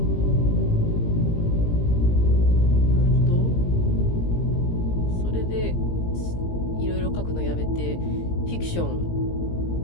フィクション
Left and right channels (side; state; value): right; late; 17 ms